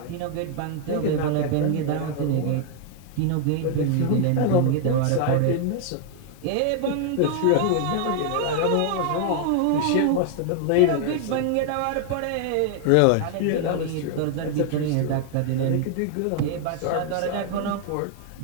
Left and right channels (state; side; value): different; both; correlation 0.00